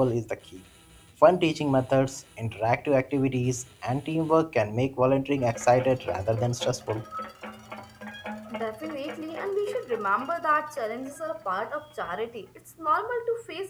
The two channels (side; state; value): both; identical; correlation 1.00